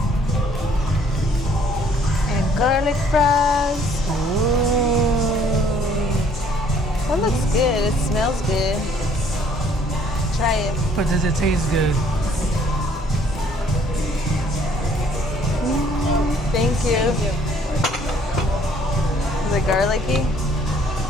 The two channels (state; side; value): normal; both; correlation 0.61